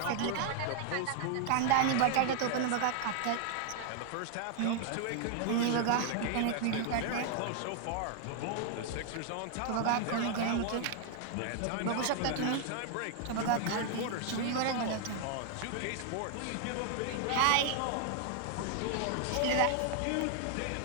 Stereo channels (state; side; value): different; both; correlation 0.00